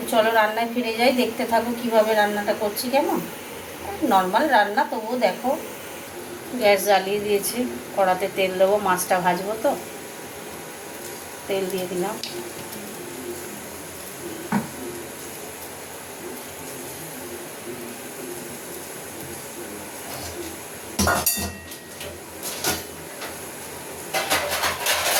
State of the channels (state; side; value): identical; both; correlation 1.00